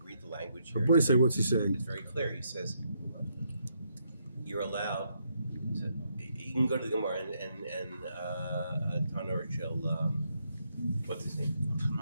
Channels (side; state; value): both; inverted; correlation -0.77